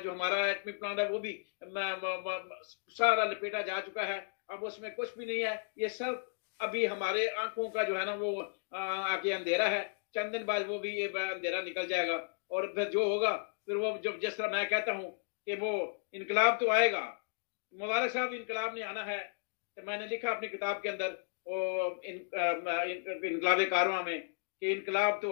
हमारा एटमी प्लांट है वो भी सारा लपेटा जा चुका है। अब उसमें कुछ भी नहीं है। ये सब अभी हमारे आंखों का जो है ना वो आगे अंधेरा है। चंद दिन बाद वो भी ये अंधेरा निकल जाएगा और फिर जो होगा फिर वो जब जिस तरह मैं कहता हूँ कि वो इनकलाब तो आएगा। मुबारक साहब, इनकलाब ने आना है। तो मैंने लिखा अपनी किताब के अंदर इनकलाब कारवां में कि इनकलाब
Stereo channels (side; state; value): right; silent; digital silence